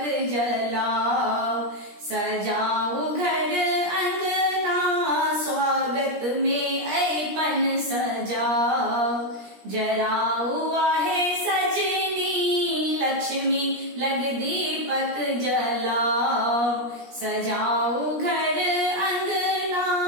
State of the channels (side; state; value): left; late; 17 ms